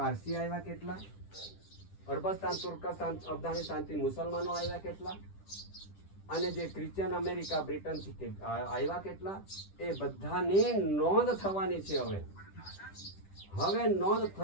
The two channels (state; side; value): late; right; 10 ms